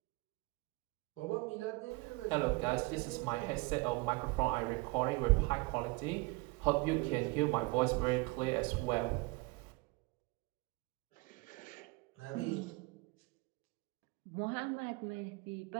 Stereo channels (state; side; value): quieter; left; 25.1 dB